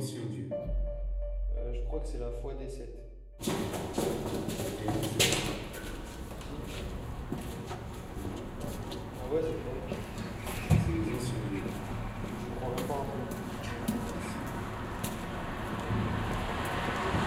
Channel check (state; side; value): identical; both; correlation 1.00